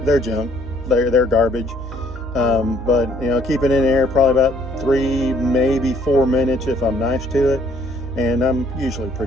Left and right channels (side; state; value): both; normal; correlation 0.63